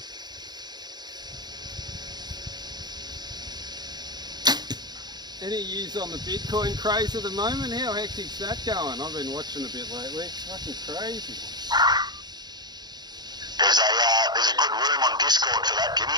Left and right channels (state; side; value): late; left; 0.20 ms